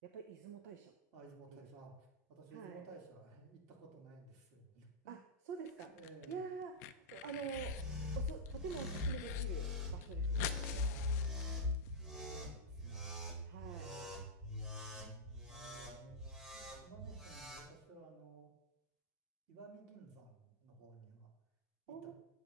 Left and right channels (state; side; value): normal; both; correlation -0.09